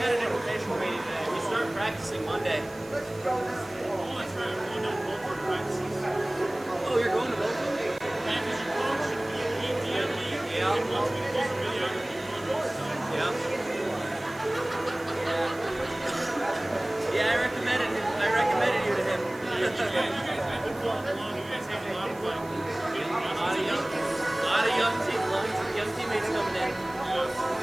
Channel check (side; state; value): right; noise; hiss, 22 dB below the sound